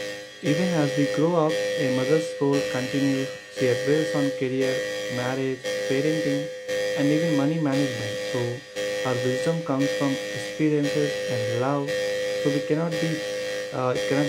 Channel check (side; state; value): both; identical; correlation 1.00